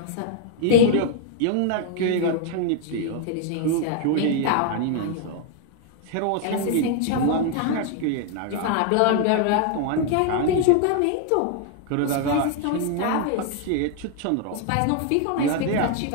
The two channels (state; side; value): different; both; correlation 0.00